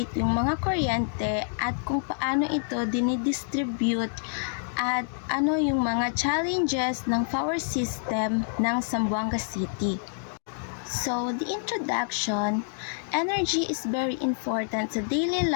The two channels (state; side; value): silent; right; digital silence